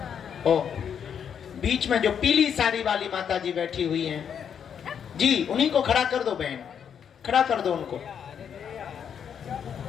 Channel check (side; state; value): right; quieter; 7.9 dB